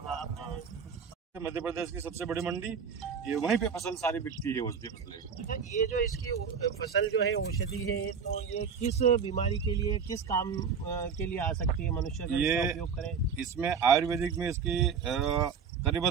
मध्य प्रदेश की सबसे बड़ी मंडी, ये वहीं पे फसल सारी बिकती है, औषधि फसलें। अच्छा, ये जो इसकी फसल जो है औषधि है, तो ये किस बीमारी के लिए, किस काम के लिए आ सकती है मनुष्य का इसका उपयोग करें? इसमें आयुर्वेदिक में इसकी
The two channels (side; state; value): left; quieter; 6.3 dB